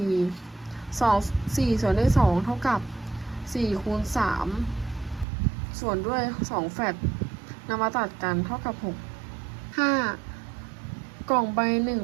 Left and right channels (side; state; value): left; drops out; at 5.2 s